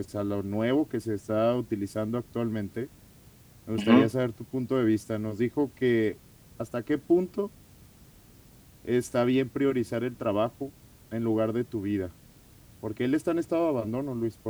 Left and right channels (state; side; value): identical; both; correlation 1.00